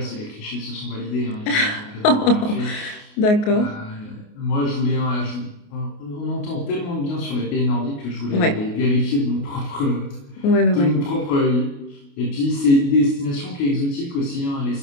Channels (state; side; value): late; right; 28 ms